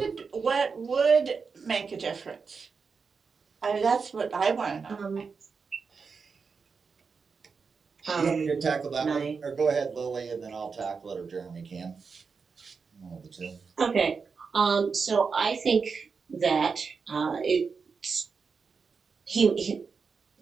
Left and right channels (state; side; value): quieter; left; 5.2 dB